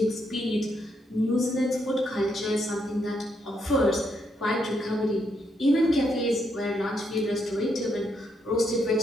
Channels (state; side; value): normal; both; correlation 0.77